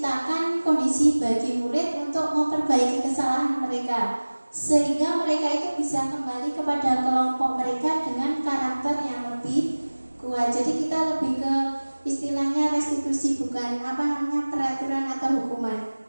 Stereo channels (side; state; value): both; inverted; correlation -1.00